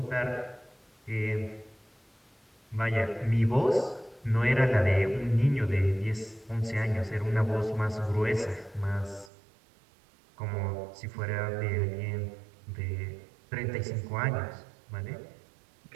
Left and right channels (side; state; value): left; drops out; at 9.3 s